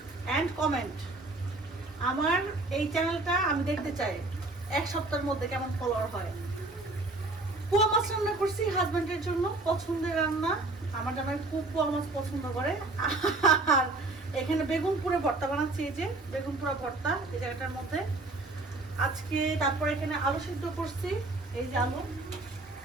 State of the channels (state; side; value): quieter; left; 3.1 dB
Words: এন্ড কমেন্ট। আমার এই চ্যানেলটা আমি দেখতে চাই এক সপ্তাহের মধ্যে কেমন ফলোয়ার হয়। পোয়া মাছ রান্না করছি হাজবেন্ডের জন্য, পছন্দের রান্না। আমার জামাই খুব পোয়া মাছ পছন্দ করে। আর এখানে বেগুন পুরে ভর্তা বানাচ্ছি, এই যে বেগুন পুরা ভর্তা এই জায়গাটার মধ্যে আজকে। তারপর এখানে আলু সিদ্ধ করছি, এই যে আলু